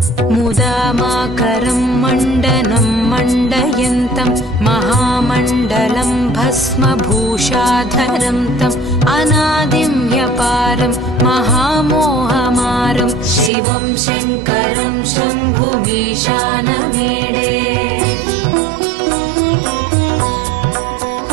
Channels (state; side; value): drops out; left; at 13.5 s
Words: मुदामाकरं मण्डनं मण्डयन्तं महामण्डलं भस्मभूषाधरं तम् अनादिं ह्यपारं महामोहमारं शिवं शङ्करं शम्भुमीशानमीडे